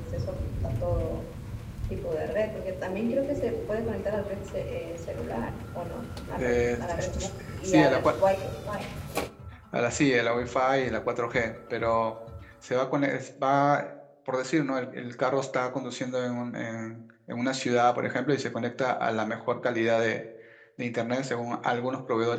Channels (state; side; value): identical; both; correlation 1.00